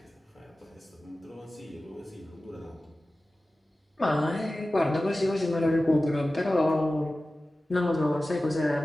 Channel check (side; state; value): both; normal; correlation 0.96